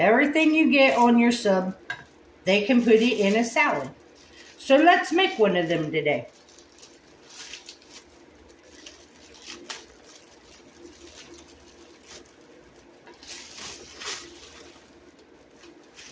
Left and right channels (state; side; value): identical; both; correlation 1.00